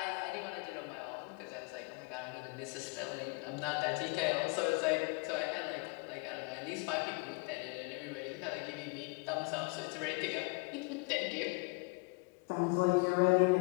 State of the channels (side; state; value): right; quieter; 31.0 dB